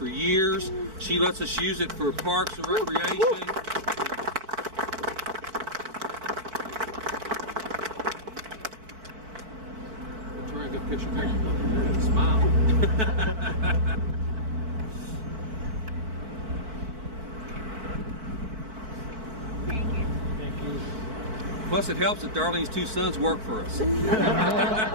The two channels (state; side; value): late; left; 4.5 ms